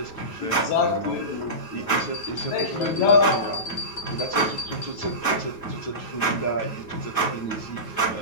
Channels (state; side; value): late; right; 9.3 ms